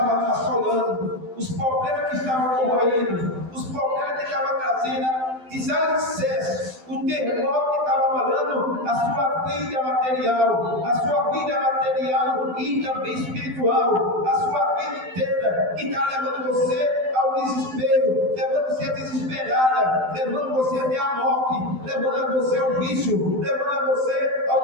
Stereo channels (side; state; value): left; late; 12 ms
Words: assolando, os problemas que estavam corroendo, os problemas que estavam trazendo desalicerce, o terremoto que estava abalando a sua vida material e também espiritual, a sua vida inteira, que está levando você ao desespero, levando você a desesperada, levando você até a morte, levando você ao vício, levando você